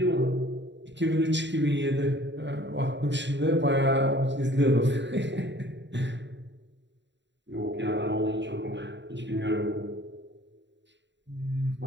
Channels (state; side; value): late; left; 0.52 ms